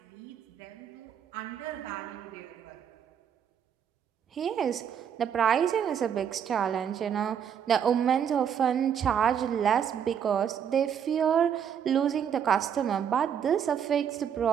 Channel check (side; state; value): left; quieter; 8.3 dB